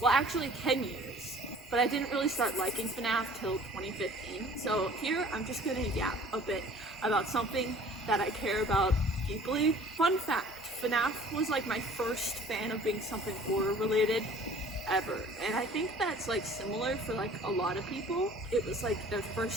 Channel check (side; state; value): both; normal; correlation 0.50